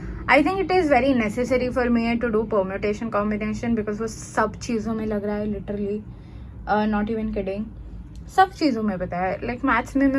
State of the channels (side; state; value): both; identical; correlation 1.00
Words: I think it is very necessary for me to do permutation combination, because वो सब चीज़ों में लग रहा है, लिटरली, नॉट इवन किडिंग. सब चीज़ों में पता है. लाइक मैथ्स में